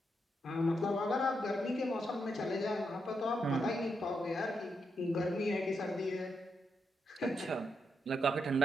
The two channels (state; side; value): normal; both; correlation 0.82